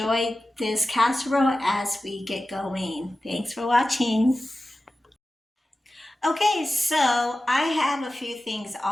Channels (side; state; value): both; normal; correlation 0.95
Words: this casserole as we get going. Thanks for watching. Okay, so I have a few things